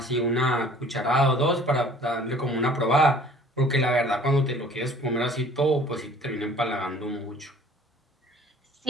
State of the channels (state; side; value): normal; both; correlation 0.52